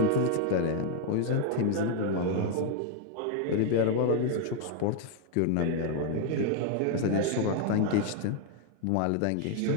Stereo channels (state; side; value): different; both; correlation 0.00